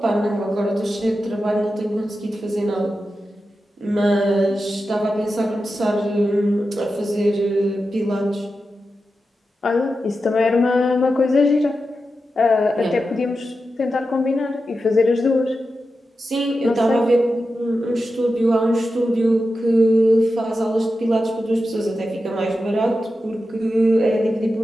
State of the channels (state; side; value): normal; both; correlation 0.90